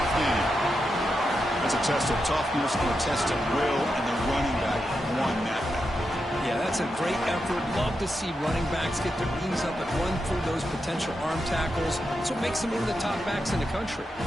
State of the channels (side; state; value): both; normal; correlation 0.87